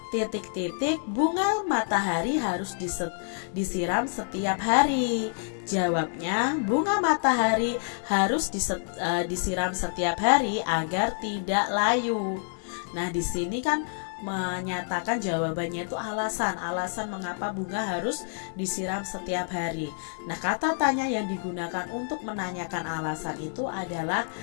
Titik-titik bunga matahari harus disiram setiap hari. Jawabnya bunga matahari harus disiram setiap hari agar tidak layu. Nah, di sini kan menyatakan jawabannya itu alasan mengapa bunga harus disiram setiap hari. Nah, kata tanya yang digunakan untuk menanyakan alasan itu adalah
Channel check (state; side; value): silent; right; digital silence